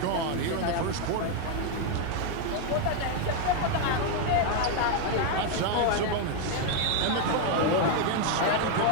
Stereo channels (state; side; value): different; both; correlation 0.01